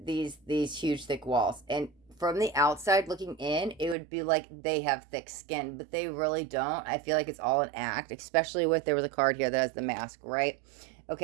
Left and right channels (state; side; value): drops out; left; at 4.0 s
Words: thick walls, and from the outside looking in, it would be like they have thick skin, but they really don't. I feel like it's all an act, especially with, there was a card here that has the mask, right?